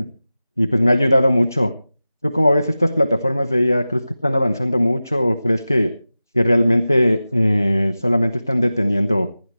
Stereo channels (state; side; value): inverted; both; correlation -0.95